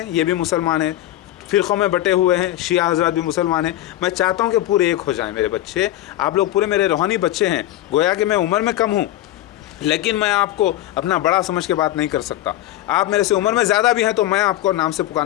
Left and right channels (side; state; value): right; quieter; 14.2 dB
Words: ये भी मुसलमान हैं, फ़िरक़ों में बटे हुए हैं, शिया हज़रात भी मुसलमान हैं। मैं चाहता हूँ कि पूरे एक हो जाएं मेरे बच्चे, आप लोग पूरे मेरे रूहानी बच्चे हैं। गोया कि मैं उम्र में कम हूँ, लेकिन मैं आपको अपना बड़ा समझ के बात नहीं कर सकता। आप मेरे से उम्र में ज़्यादा भी हैं, तो मैं आपको नाम से